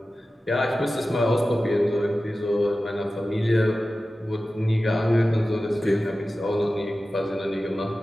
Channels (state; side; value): normal; both; correlation 0.95